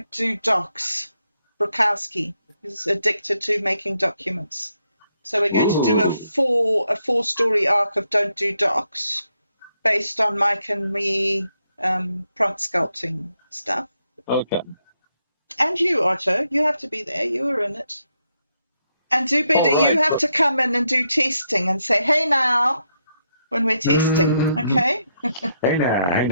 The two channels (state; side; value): inverted; both; correlation -0.80